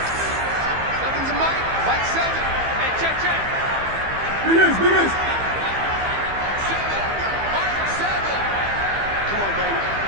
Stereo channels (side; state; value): left; late; 15 ms